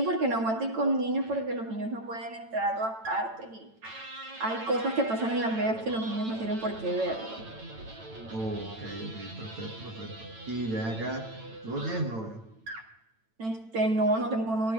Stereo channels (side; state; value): left; late; 9.0 ms